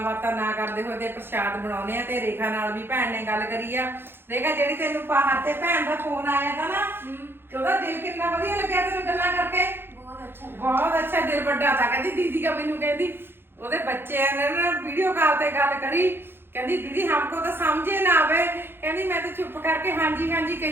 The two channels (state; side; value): late; left; 0.10 ms